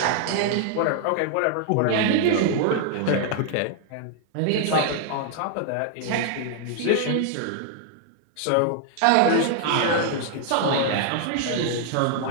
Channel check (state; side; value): different; both; correlation 0.00